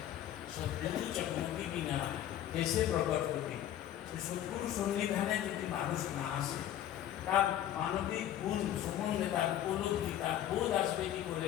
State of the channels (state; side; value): quieter; right; 11.7 dB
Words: সদ্গুরু চকমকি বিনা দেশে প্রকট হতে, সদ্গুরু সন্নিধানে যদি মানুষ না আসে, তার মানবিক গুণ সম্বন্ধে তার উপলব্ধি, তার বোধ আসবে কি করে?